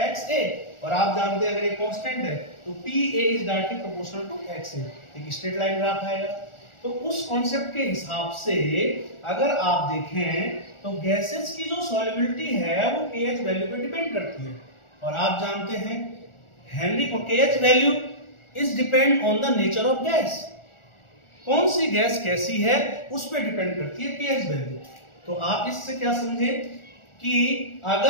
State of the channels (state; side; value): late; right; 1.4 ms